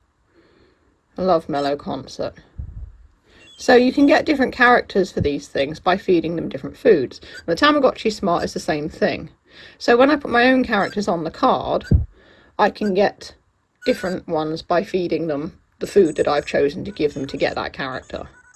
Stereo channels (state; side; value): identical; both; correlation 1.00